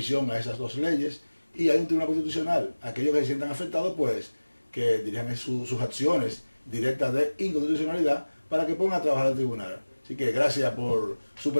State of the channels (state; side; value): inverted; both; correlation -1.00